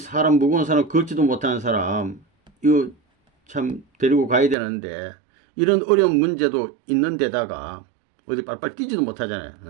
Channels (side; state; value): left; drops out; at 4.5 s